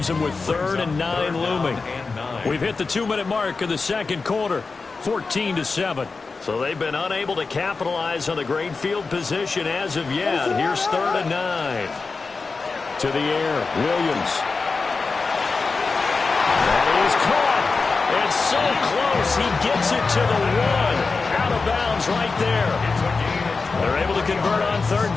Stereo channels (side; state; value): right; quieter; 4.3 dB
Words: them with 3rd and 9 looming. We've hit the 2-minute mark of the second quarter. 14-7. So they've been unable to capitalize on the great field position as of yet. Here's 3rd and 9. To the air, Williams. That is caught. It's so close. He gets it to the 1. Out of bounds right there. They're able to convert on 3rd